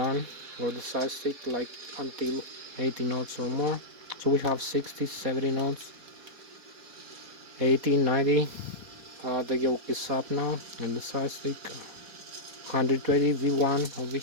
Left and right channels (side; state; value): left; late; 4.2 ms